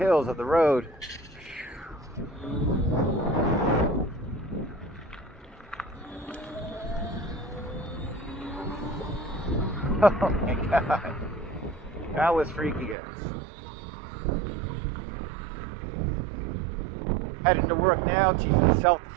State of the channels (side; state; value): left; drops out; at 13.0 s